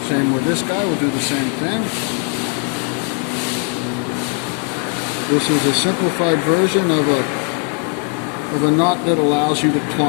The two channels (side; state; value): right; quieter; 32.9 dB